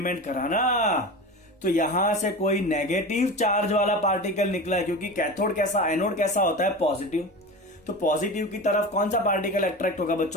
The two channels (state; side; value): normal; both; correlation 0.29